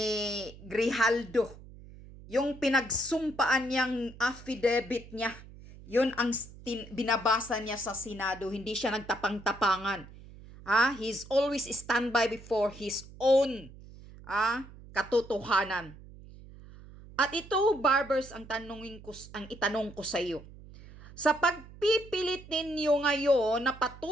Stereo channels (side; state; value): right; noise; hum, 18 dB below the sound